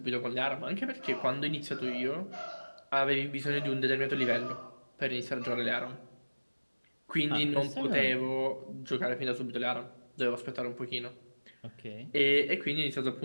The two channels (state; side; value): inverted; both; correlation -1.00